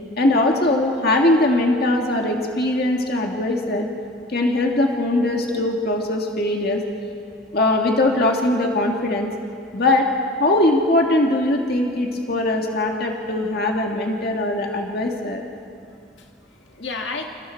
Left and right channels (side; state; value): both; normal; correlation 0.39